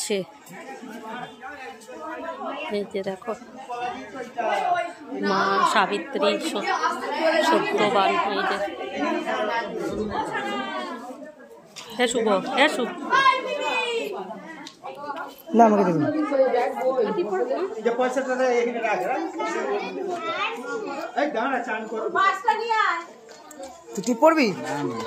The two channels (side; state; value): both; identical; correlation 1.00